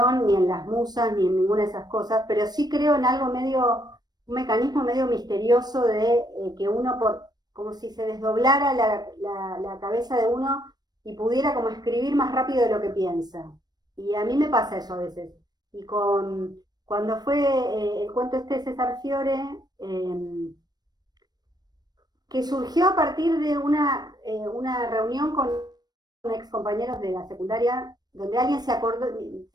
ni en las musas, ni en ninguna de esas cosas, pero sí creo en algo medio, un mecanismo medio misterioso de que uno, como si se desdoblara la cabeza de uno y pudiera como escribir más rápido de lo que piensa. Y a mí me pasa eso a veces. Y cuando fue el cuento este de César Fiore, que surgió a partir de una reunión con ex compañeros de la secundaria, donde alguien se acordó,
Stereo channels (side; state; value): left; late; 0.19 ms